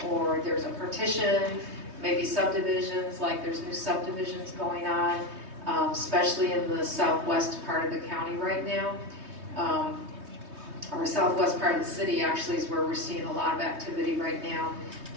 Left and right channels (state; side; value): late; left; 3.2 ms